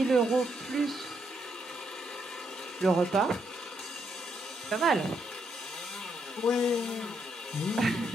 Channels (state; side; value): normal; both; correlation 0.76